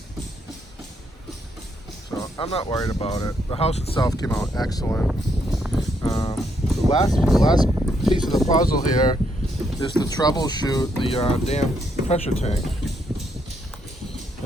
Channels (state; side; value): normal; both; correlation 0.75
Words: So I'm not worried about it. The house itself came out excellent. The last piece of the puzzle here is to troubleshoot the damn pressure tank.